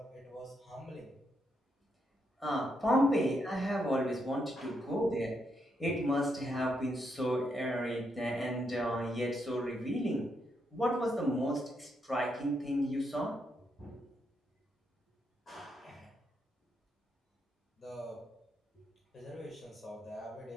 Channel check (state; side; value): normal; both; correlation 0.79